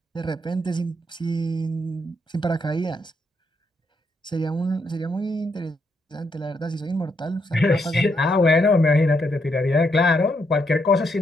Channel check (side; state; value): both; normal; correlation 0.77